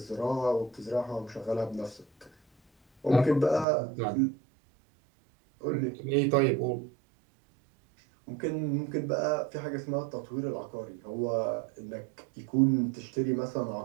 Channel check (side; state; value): left; drops out; at 3.7 s